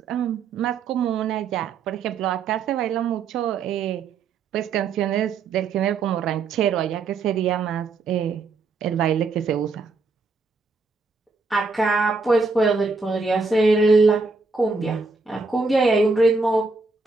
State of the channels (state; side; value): quieter; left; 4.2 dB